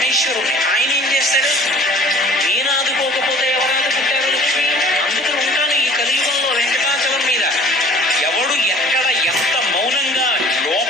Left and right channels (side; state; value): both; normal; correlation 0.49